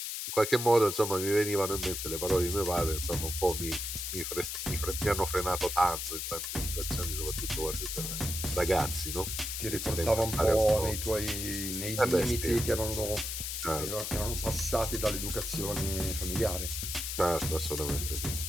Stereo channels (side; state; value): left; noise; hiss, 4 dB below the sound